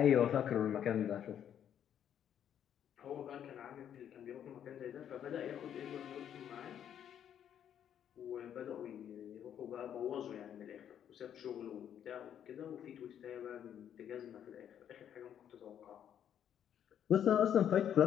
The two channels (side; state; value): right; quieter; 9.5 dB